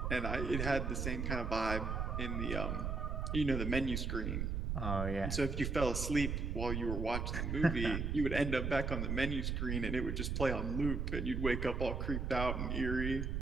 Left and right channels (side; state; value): right; noise; rumble, 1 dB below the sound